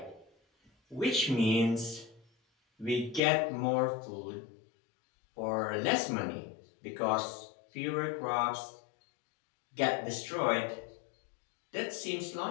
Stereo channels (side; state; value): right; drops out; at 3.2 s